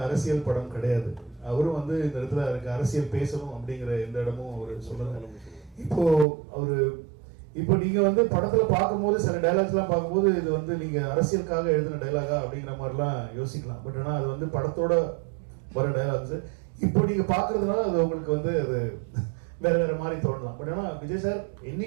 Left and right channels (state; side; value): drops out; left; at 6.2 s